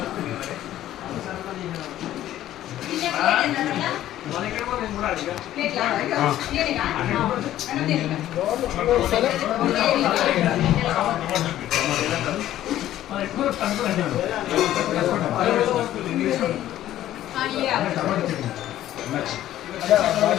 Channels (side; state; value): right; quieter; 13.0 dB